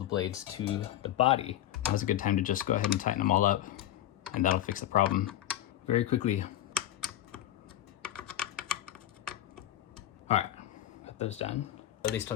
blades to the body. Now's a good time to just go ahead and tighten them all up, and that'll fix the problem very quickly. All right, got those done. At least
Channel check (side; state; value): right; quieter; 12.8 dB